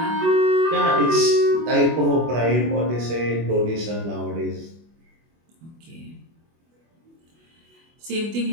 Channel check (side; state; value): left; late; 24 ms